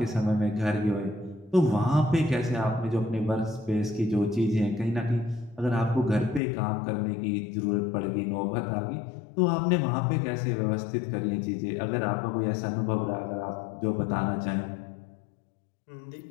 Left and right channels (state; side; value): drops out; right; at 6.4 s